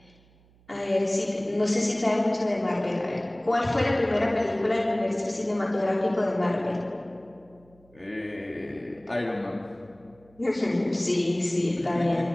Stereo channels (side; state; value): right; noise; hum, 29 dB below the sound